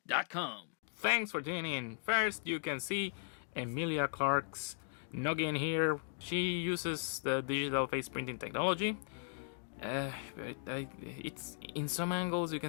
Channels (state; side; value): silent; right; digital silence